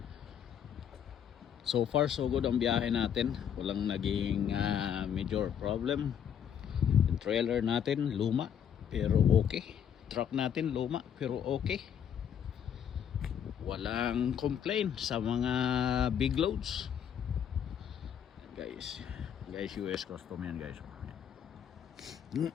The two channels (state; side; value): quieter; right; 8.7 dB